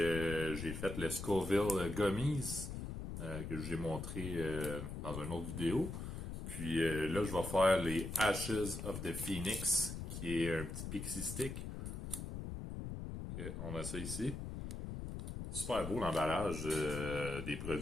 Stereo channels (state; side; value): noise; left; rumble, 6 dB below the sound